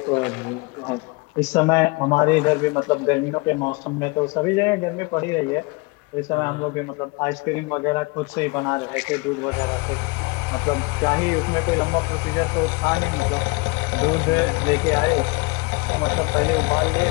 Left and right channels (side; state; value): right; quieter; 26.9 dB